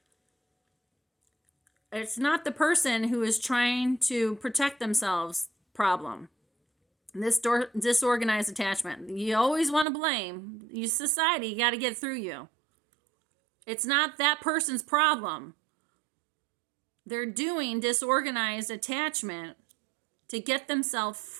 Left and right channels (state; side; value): drops out; left; at 9.9 s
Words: It's not the person who is trying to protect themselves problem. This disorganized attachment. You always want to blame. You society, you got to get through you. It's not that person's problem. They're doing disorganized attachment to get themselves